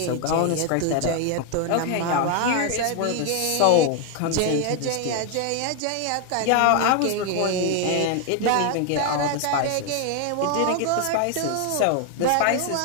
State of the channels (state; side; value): different; both; correlation 0.01